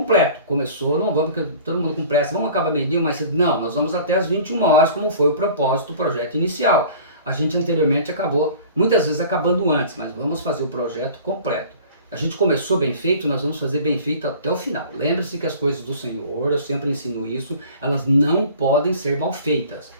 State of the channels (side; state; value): both; inverted; correlation -0.44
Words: Começou, não vamos, porque todo mundo com pressa, vamos acabar meio-dia, mas não, nós vamos até as 21 horas, como foi o propósito do projeto inicial. A gente anteriormente acabou, muitas vezes acabando antes, mas vamos fazer o projeto completo. A gente começou bem feito, nós vamos fazer bem feito até o final. Lembre-se que as coisas do Senhor, eu sempre ensino isso, elas não podem ser mal feitas.